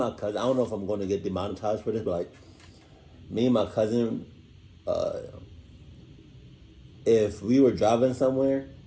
cousin, I don't know if I'm going to get demonetized for this, but, like, me and my cousin, if we were driving somewhere,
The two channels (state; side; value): identical; both; correlation 1.00